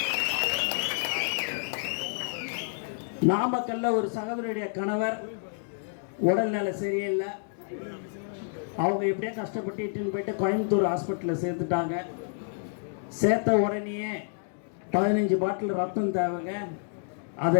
நாமக்கல்ல ஒரு சகோதரியுடைய கணவர் உடல்நிலை சரியில்லை. அவங்க எப்படியே கஷ்டப்பட்டு இட்டுன்னு போயிட்டு கோயம்புத்தூர் ஹாஸ்பிட்டலில் சேர்த்துட்டாங்க. சேர்த்த உடனேயே 15 பாட்டில் ரத்தம் தேவைங்க.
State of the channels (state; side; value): silent; right; digital silence